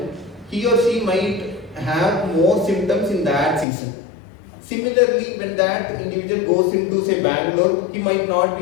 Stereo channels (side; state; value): right; drops out; at 3.7 s